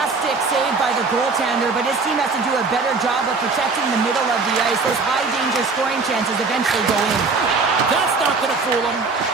save by the goaltender, but his team has to do a better job of protecting the middle of the ice. Those high-danger scoring chances eventually go in. That's not going to fool him.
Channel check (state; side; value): quieter; left; 4.3 dB